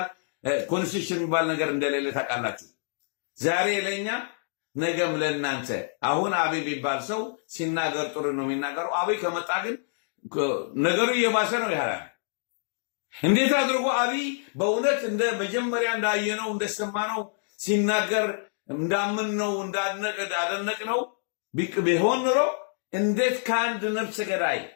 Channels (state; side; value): silent; right; digital silence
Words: ኮንስቲቱሽን የሚባል ነገር እንደሌለ ታውቃላችሁ። ዛሬ ለኛ ነገም ለእናንተ። አሁን አብይ የሚባል ሰው ሲናገር ጥሩ ነው የሚናገረው። አብይ ከመጣ ግን ነገሩ እየባሰ ነው ያለው። እንዴት አድርጎ አብይ በእውነት እንደ መጀመሪያ እንዳየነው እንደሰማነው ሲናገር እንዳምንነው እንዳደነቅነው ቢሆን ኖሮ እንዴት ከአንድ ነፍሰ ገዳይ፣